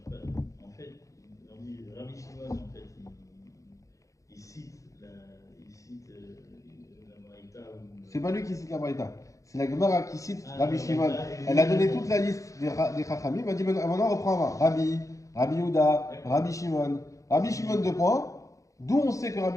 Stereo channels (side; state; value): right; late; 0.16 ms